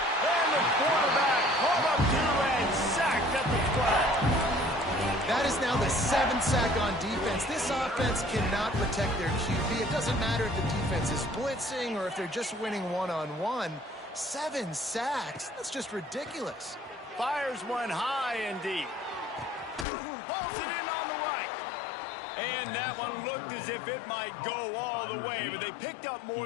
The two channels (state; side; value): drops out; right; at 19.9 s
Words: And the quarterback pulled up 2 and sacked at the 12. That is now the 7th sack on defense. This offense cannot protect their QB. It doesn't matter if the defense is blitzing or if they're just winning one-on-one. 7 sacks? That's just ridiculous. Fires one high and deep. Pulls it in on the right. And that one looked as if it might go all the way, but they picked up